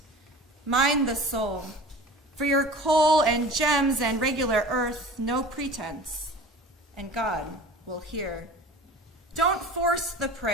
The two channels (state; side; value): normal; both; correlation 0.39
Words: Mind the soul. For your coal and gems and regular earth, no pretense, and God will hear. Don't force the